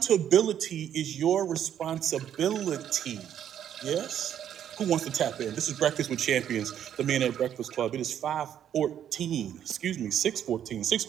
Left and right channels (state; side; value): quieter; left; 9.9 dB